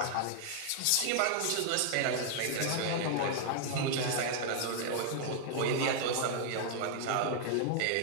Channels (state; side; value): different; both; correlation 0.00